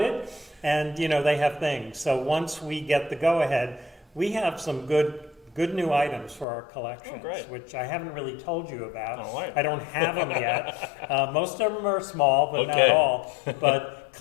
and, they have things. So once we get the go-ahead, we have some good new items for our collections, great. which I haven't really told you about. All right. I don't have them yet. Most of them are small, but not Okay. all. But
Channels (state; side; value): drops out; right; at 6.5 s